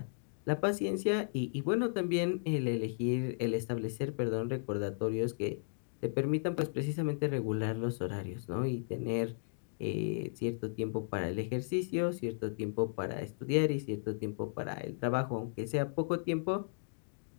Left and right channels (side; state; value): right; silent; digital silence